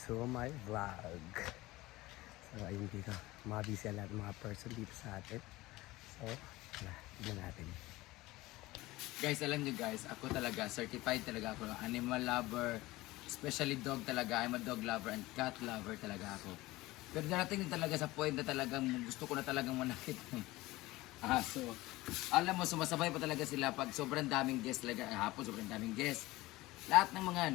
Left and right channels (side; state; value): right; quieter; 19.1 dB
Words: to my vlog. So, ayun dito. Mga busy lahat mga person dito sa atin. So, tignan natin. Guys, alam nyo guys, ako talaga, certified talaga ako. Animal lover, especially dog talaga. I'm a dog lover and cat lover talaga ako. Pero darating din talaga sa point na talagang gusto ko na talagang manakit ng aso. Alam mo, sumasabay pa talaga sila pag sobrang daming guest talaga. Hapon, sobrang daming guest. Lahat ng mga